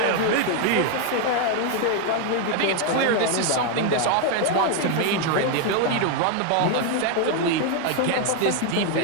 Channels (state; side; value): different; both; correlation 0.01